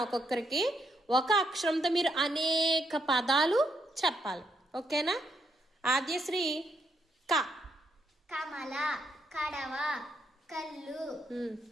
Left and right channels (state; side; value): normal; both; correlation 0.77